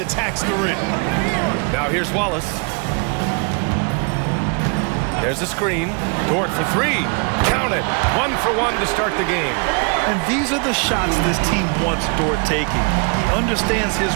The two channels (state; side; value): quieter; left; 35.6 dB